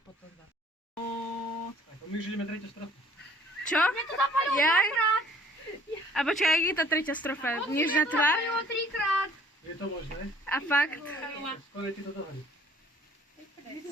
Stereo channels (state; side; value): normal; both; correlation 0.56